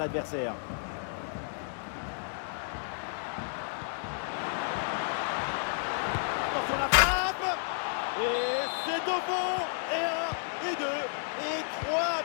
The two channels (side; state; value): right; silent; 57 dB below the other